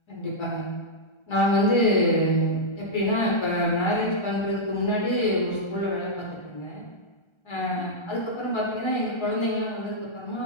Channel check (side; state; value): right; late; 1.3 ms